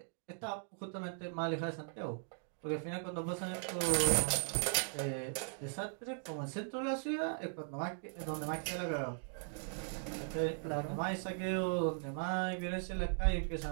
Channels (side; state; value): left; silent; digital silence